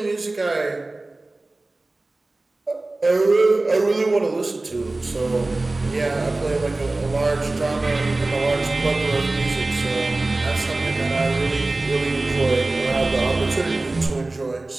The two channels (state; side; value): quieter; left; 3.0 dB